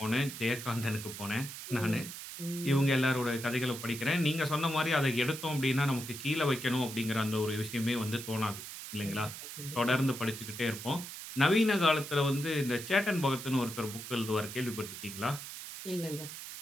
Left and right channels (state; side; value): noise; right; hiss, 10 dB below the sound